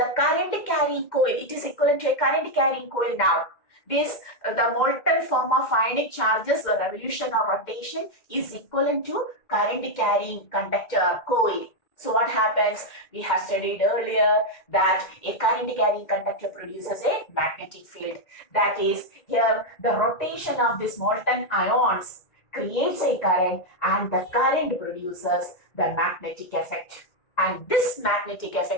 current carrying coil. It is equivalent to a current carrying coil now. This, the molten form of ionic charges, the revolution or rotation is equivalent to current carrying conductor coil. So what happens? We have studied earlier that a current carrying conductor produces a magnetic field. That is, here the rotation of these molten ions creates a current, and the current produces the magnetic effect. And this magnetic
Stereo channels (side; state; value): right; late; 2.1 ms